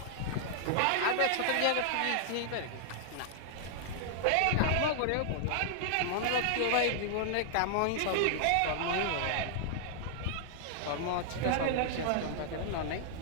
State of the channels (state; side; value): different; both; correlation -0.01